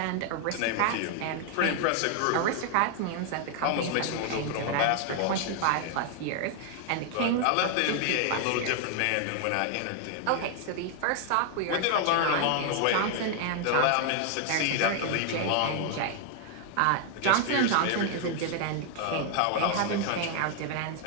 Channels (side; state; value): both; different; correlation 0.00